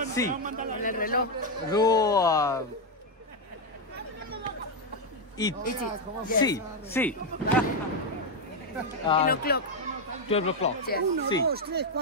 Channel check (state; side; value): normal; both; correlation 0.04